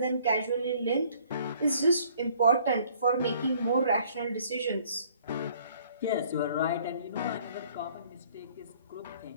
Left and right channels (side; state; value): both; inverted; correlation -0.59